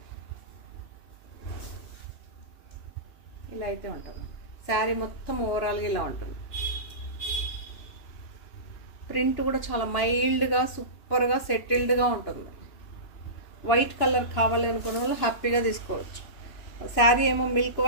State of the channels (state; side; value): late; right; 2.9 ms